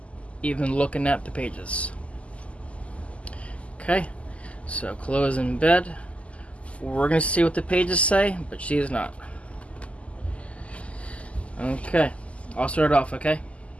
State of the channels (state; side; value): late; right; 0.062 ms